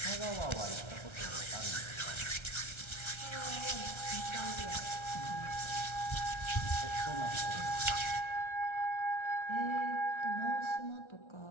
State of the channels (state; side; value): late; right; 1.3 ms